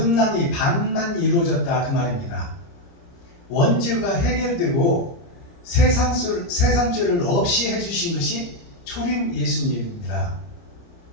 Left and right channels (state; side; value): late; right; 29 ms